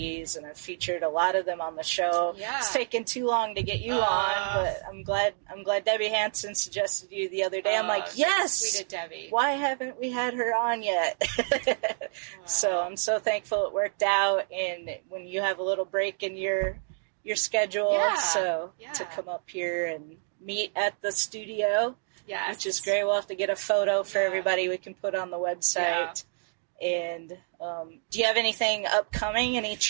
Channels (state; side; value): silent; left; 59 dB below the other